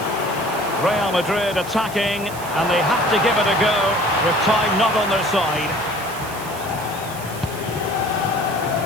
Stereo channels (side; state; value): right; noise; hiss, 14 dB below the sound